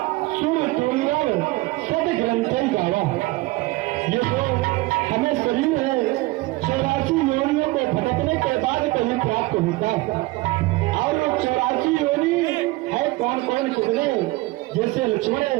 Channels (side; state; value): left; quieter; 20.8 dB